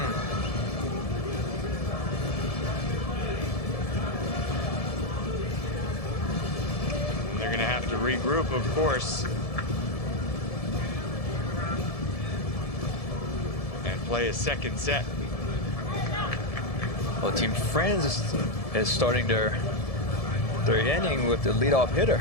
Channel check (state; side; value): late; right; 1.7 ms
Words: they're going to have to regroup, of course, and play a second set. Well, Team France is starting their inning with the leadoff hitter.